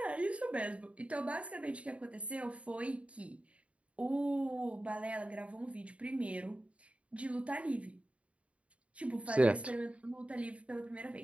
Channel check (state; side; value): late; left; 0.063 ms